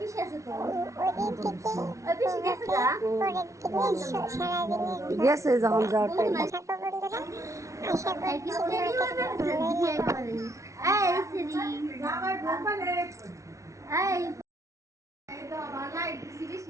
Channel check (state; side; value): late; left; 0.14 ms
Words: দিন থেকে পরের দিনের সারাদিনের থাকো বন্ধুরা। আশা করছি তোমাদের ভালোই লাগবে।